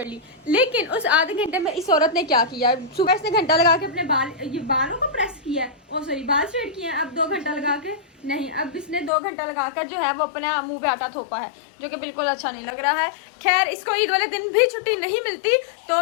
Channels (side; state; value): right; drops out; at 9.1 s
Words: ली। लेकिन उस आधे घंटे में इस औरत ने क्या किया, सुबह इसने घंटा लगा के अपने बालों को प्रेस किया है, ओ सॉरी बाल स्ट्रेट किए हैं। अब 2 घंटा लगा के नहीं, अब इसने 2 घंटा लगाकर जो है वो अपने मुंह पे आटा थोपा है, जो कि बिल्कुल अच्छा नहीं लग रहा है। खैर इसको ईद वाले दिन भी छुट्टी नहीं मिलती,